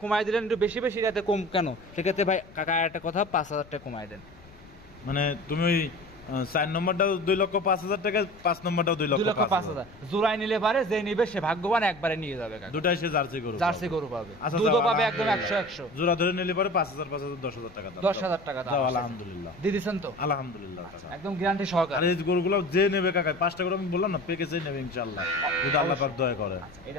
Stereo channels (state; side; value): noise; left; rumble, 23 dB below the sound